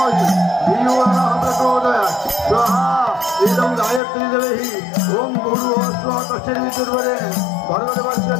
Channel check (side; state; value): right; drops out; at 4.0 s